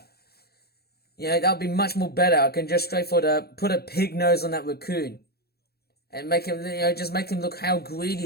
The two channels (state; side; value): late; right; 0.46 ms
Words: That would be much more better. I can just straightforward put a pig nose on that raccoon and make him, just make him look how